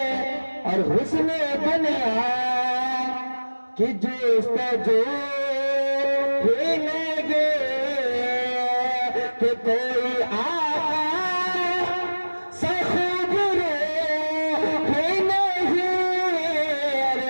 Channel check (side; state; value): both; inverted; correlation -1.00